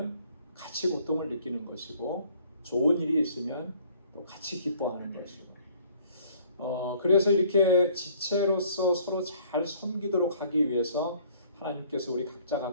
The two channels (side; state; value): both; inverted; correlation -0.59